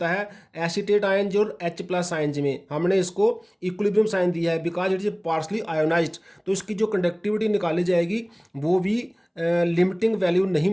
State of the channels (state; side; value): identical; both; correlation 1.00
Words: है एसीटेट आयन जो H प्लस आयन्स में, हमने इसको इक्विलिब्रियम साइन दिया है because it is partially ionised. तो इसकी जो कंडक्टिविटी निकाली जाएगी वो भी लिमिटिंग वैल्यू नहीं